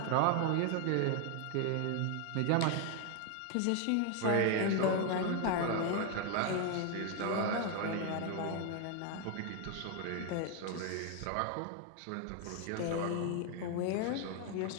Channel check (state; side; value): different; both; correlation 0.01